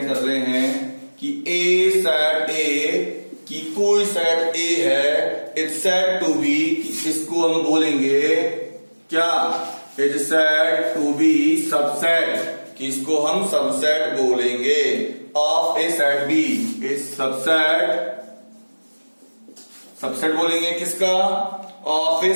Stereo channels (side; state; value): both; inverted; correlation -1.00